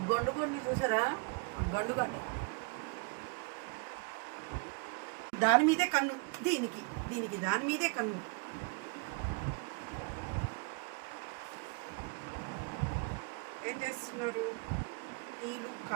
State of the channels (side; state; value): left; quieter; 31.9 dB